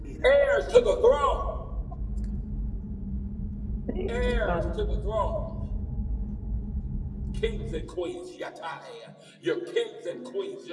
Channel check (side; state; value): both; identical; correlation 1.00